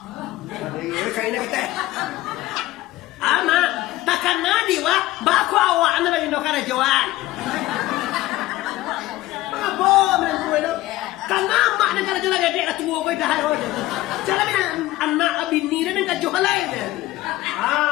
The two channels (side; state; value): right; quieter; 16.9 dB